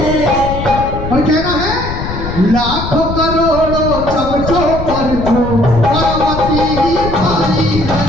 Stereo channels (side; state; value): left; noise; rumble, 6 dB below the sound